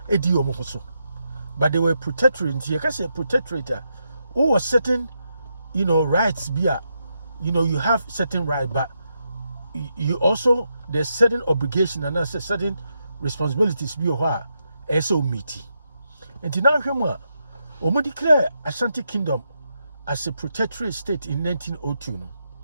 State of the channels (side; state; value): both; inverted; correlation -0.83